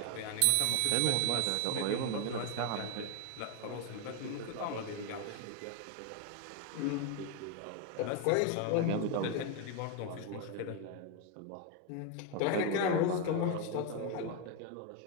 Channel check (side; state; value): both; different; correlation 0.01